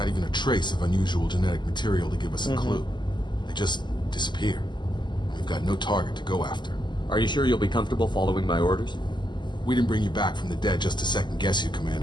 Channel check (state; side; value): late; right; 0.21 ms